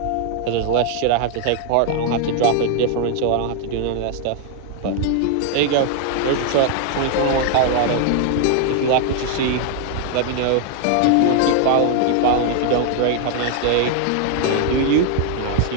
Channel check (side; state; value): both; different; correlation 0.00